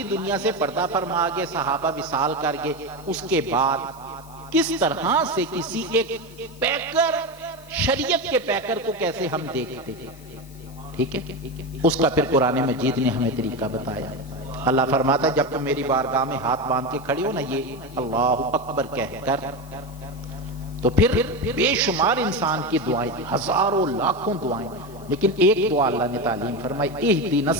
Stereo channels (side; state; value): left; noise; hiss, 24 dB below the sound